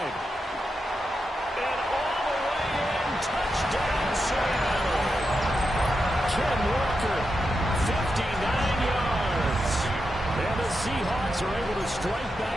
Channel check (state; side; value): normal; both; correlation 0.87